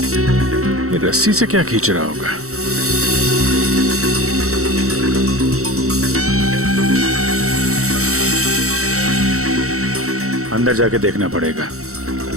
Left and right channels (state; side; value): late; left; 0.64 ms